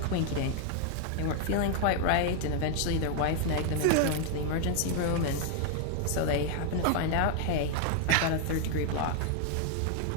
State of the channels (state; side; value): different; both; correlation 0.00